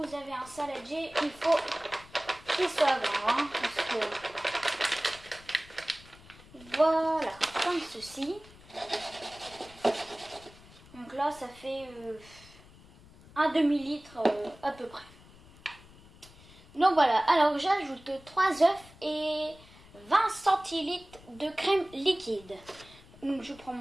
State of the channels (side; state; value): left; noise; rumble, 22 dB below the sound